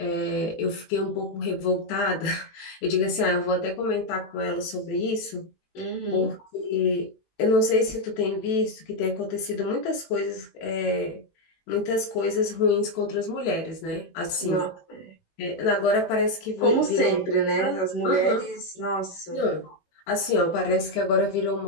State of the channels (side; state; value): right; late; 18 ms